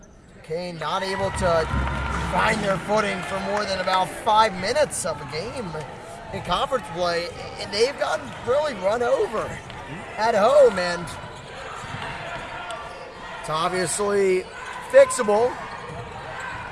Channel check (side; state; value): both; identical; correlation 1.00